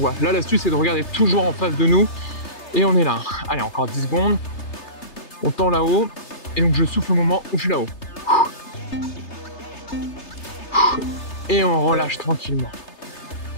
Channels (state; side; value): late; right; 3.3 ms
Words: Là, l'astuce c'est de regarder toujours en face de nous et on est là. Allez, encore 10 secondes. On tend là-haut et donc je souffle au moment où je suis là-haut. Et on relâche tranquillement.